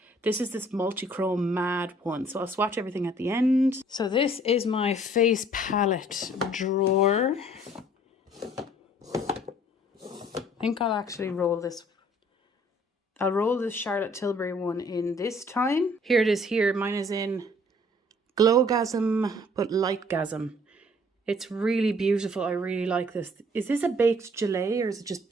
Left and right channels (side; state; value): both; normal; correlation 0.57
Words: This is this multi-chrome mad one. So I'll swatch everything at the end. So this is my face palette drawer. I think I'll actually roll this. I'll roll this Charlotte Tilbury one in this time. Here it is here. Mine is in Glowgasm, but Lightgasm. It's really beautiful. I really like this. Is this a baked gelée or is it just